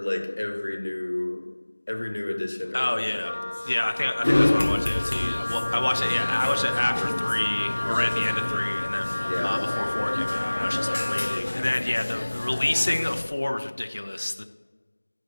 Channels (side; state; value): both; inverted; correlation -1.00